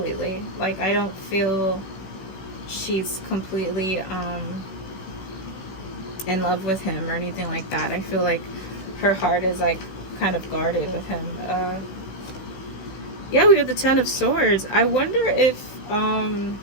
Like, I don't feel she's completely in love with him or anything like that. I feel like her heart is like kind of guarded with him. Yeah, we have the Ten of Swords. I wonder if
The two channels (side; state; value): right; late; 16 ms